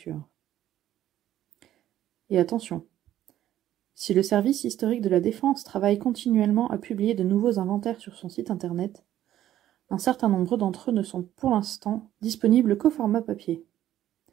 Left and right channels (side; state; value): left; quieter; 12.4 dB